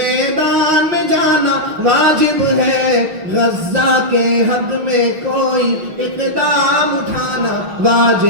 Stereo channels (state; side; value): late; left; 5.7 ms